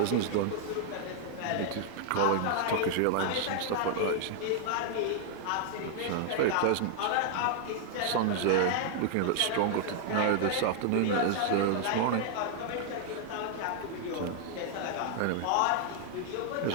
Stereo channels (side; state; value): both; different; correlation 0.00